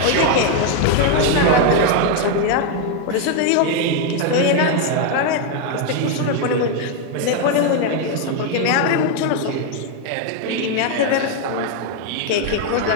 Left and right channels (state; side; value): different; both; correlation 0.01